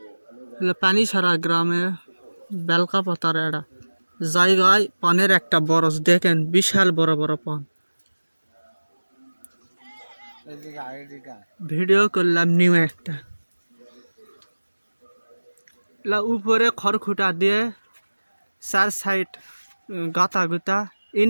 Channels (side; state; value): both; inverted; correlation -1.00